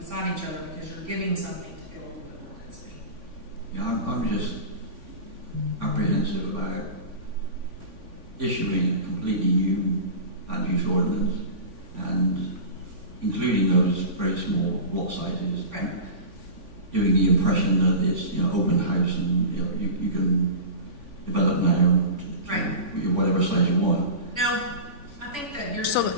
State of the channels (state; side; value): late; left; 3.5 ms